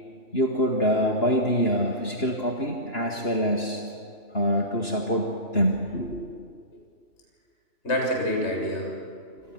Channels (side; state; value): right; late; 2.9 ms